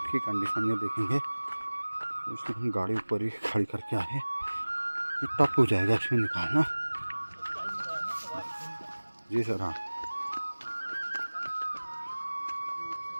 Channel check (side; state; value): both; inverted; correlation -1.00